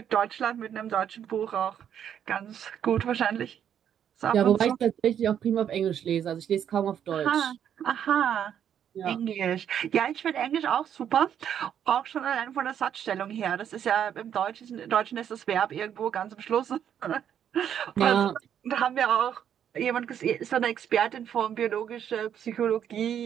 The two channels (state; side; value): quieter; left; 9.2 dB